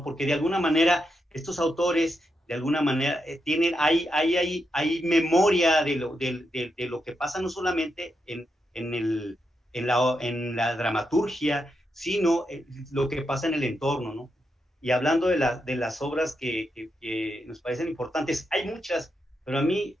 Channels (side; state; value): both; normal; correlation 0.84